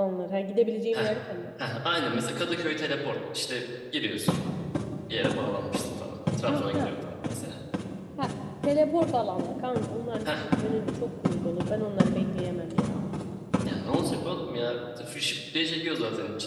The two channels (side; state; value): both; identical; correlation 1.00